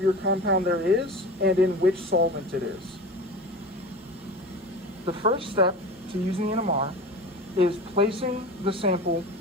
compound there is, and in which solvent it is. The first step to using the NMR is placing the sample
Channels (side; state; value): both; normal; correlation 0.33